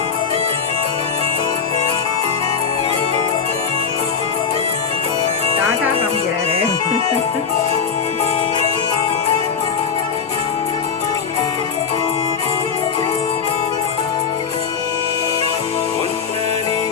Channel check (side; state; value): right; quieter; 6.3 dB